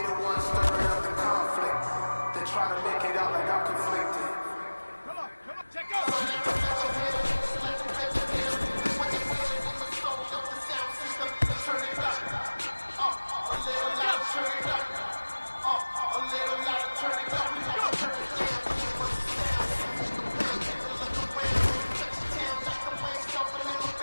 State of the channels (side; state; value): both; inverted; correlation -1.00